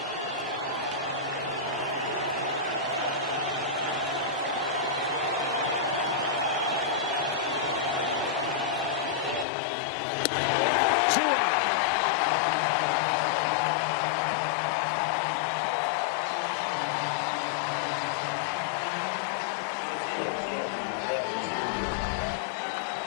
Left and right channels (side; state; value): right; drops out; at 9.5 s